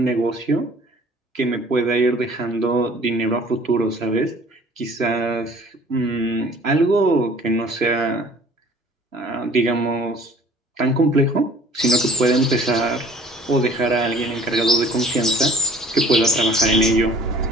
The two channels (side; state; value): both; normal; correlation 0.51